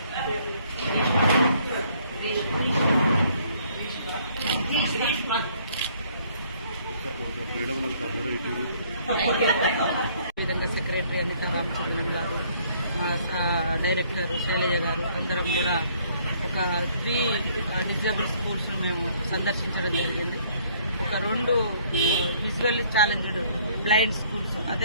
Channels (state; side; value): inverted; both; correlation -0.62